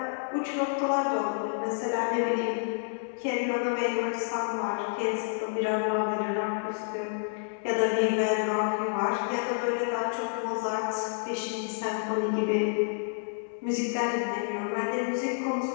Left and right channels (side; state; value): right; silent; digital silence